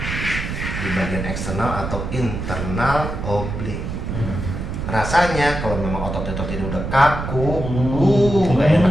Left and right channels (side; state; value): right; noise; rumble, 5 dB below the sound